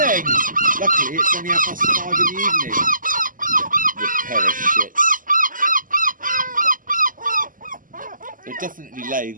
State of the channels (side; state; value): left; late; 0.39 ms